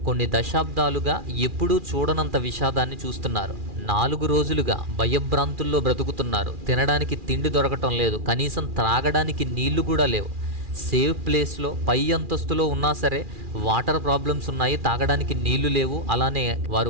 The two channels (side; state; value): left; late; 2.4 ms